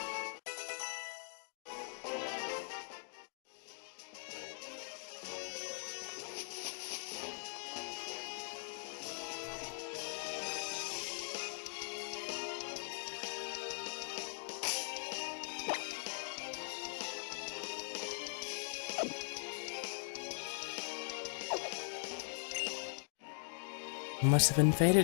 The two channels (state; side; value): silent; right; digital silence